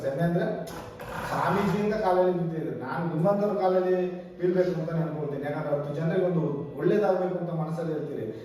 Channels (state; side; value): identical; both; correlation 1.00